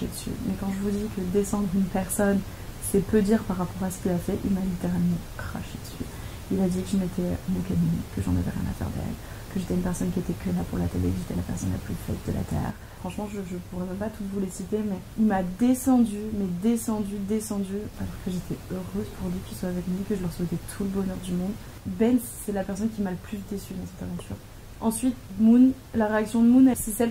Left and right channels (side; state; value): both; identical; correlation 1.00